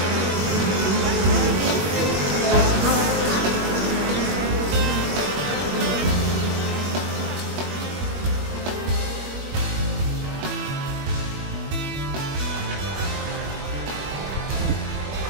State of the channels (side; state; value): left; late; 21 ms